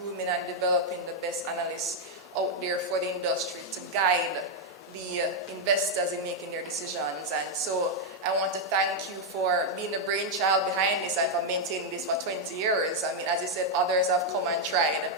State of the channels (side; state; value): both; normal; correlation 0.00